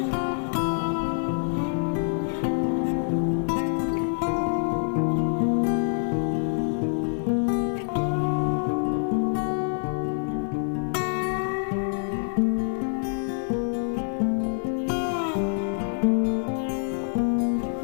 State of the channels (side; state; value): right; silent; 61 dB below the other